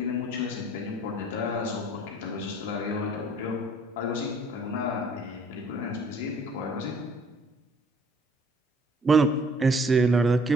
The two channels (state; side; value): normal; both; correlation 0.57